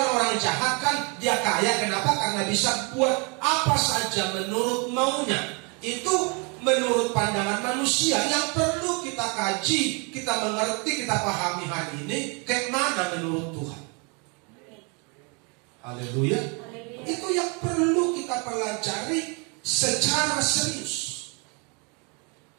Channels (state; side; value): quieter; left; 31.5 dB